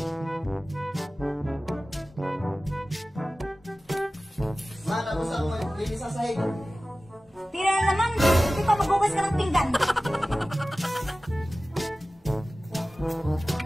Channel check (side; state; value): both; normal; correlation 0.96